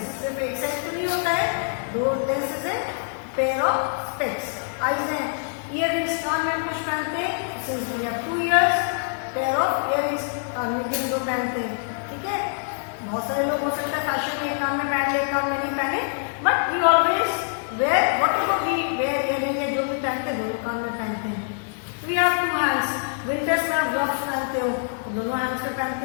सिर्फ एक साइड तो नहीं होता है, 2 लेंसेज है, पेयर ऑफ स्पेक्स। आईज है, इयररिंग्स, कान में हम कुछ पहनते हैं, since we have 2 ears, pair of earrings कान में भी हम 2 पहनते हैं। ठीक है, बहुत सारे लोग हो सकता है फैशन में एक कान में पहन ले एक कान में नहीं पहने, but we always wear whatever we wear earring है, जो भी पहनते हैं दोनों कान में पहनते हैं। वी हैव 2 हैंड्स, विंटर्स में आप ग्लव्स पहनते हो तो दोनों हैंड्स में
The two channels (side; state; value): right; silent; digital silence